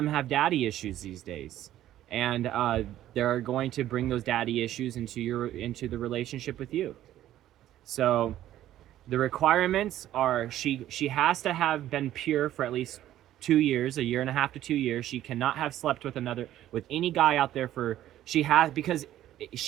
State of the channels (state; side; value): quieter; left; 13.0 dB